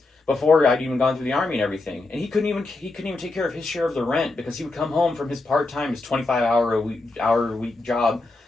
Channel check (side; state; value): right; quieter; 3.2 dB